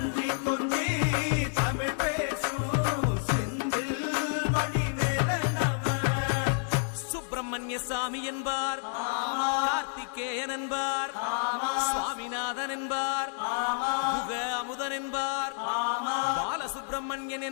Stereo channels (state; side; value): silent; right; 58 dB below the other